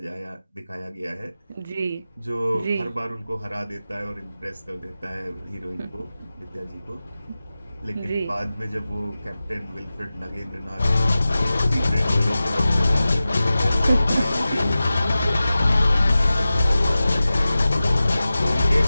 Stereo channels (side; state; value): both; inverted; correlation -0.95